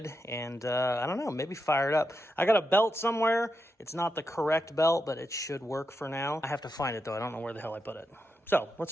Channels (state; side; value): normal; both; correlation 0.86